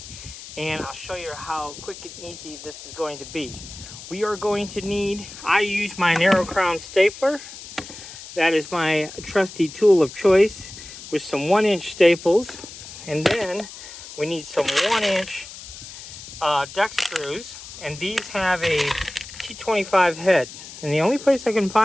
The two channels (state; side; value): noise; left; hiss, 14 dB below the sound